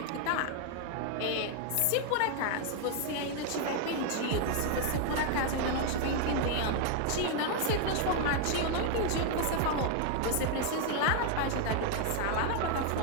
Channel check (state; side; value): different; both; correlation 0.00